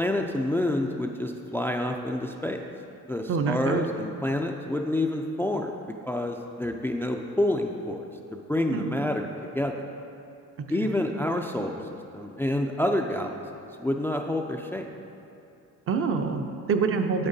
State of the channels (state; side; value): normal; both; correlation 0.66